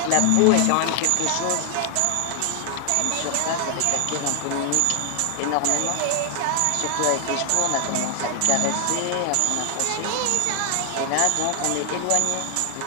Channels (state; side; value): different; both; correlation 0.00